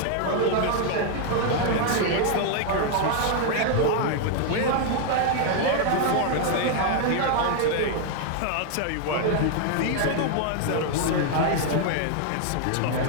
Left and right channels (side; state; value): both; different; correlation 0.00